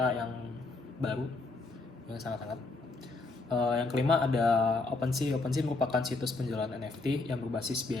yang baru yang sangat-sangat. Yang kelima ada OpenSea. OpenSea merupakan situs penjualan NFT yang berbasis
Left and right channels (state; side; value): quieter; right; 3.5 dB